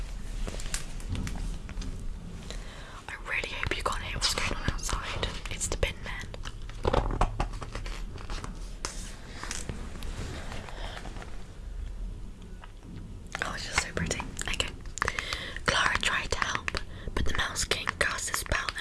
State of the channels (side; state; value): both; identical; correlation 1.00